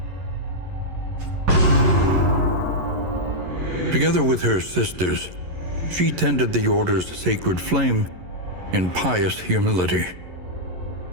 Together with her sisters, she tended the Order's sacred flame in pious humility.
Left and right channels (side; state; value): left; late; 11 ms